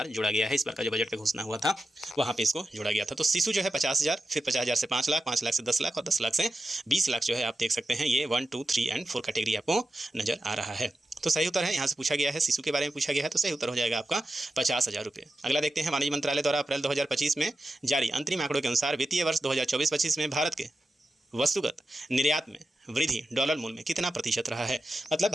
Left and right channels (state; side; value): normal; both; correlation 0.91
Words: जोड़ा गया है। इस बार का जो बजट पे घोषणा हुआ था वहाँ पे इसको जोड़ा गया था। तो शिशु जो है 50,000, फिर 50,000 से 5 लाख, 5 लाख से 10 लाख और 10 लाख से 20 लाख जो है आप देख सकते हैं। ये 1, 2, 3 एंड 4 कैटेगरी आपको नजर आ रहा है। तो सही उत्तर है, यहाँ से पूछा गया है, शिशु के बारे में पूछा गया है, तो सही उत्तर हो जाएगा आपका 50,000 रुपये। अगला देखते हैं, वाणिज्य मंत्रालय द्वारा अप्रैल 2025 में जारी अंतरिम आंकड़ों के अनुसार वित्तीय वर्ष 2024-25 में भारत के वस्तुगत निर्यात में वृद्धि डॉलर मूल्य में कितना प्रतिशत रहा है। मतलब